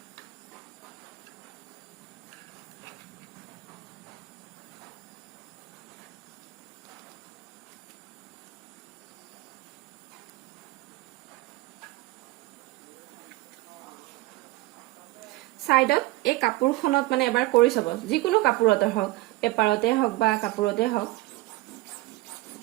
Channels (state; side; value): quieter; left; 19.5 dB